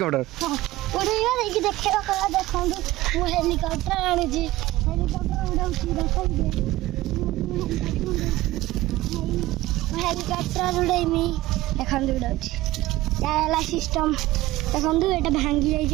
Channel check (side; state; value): left; quieter; 17.3 dB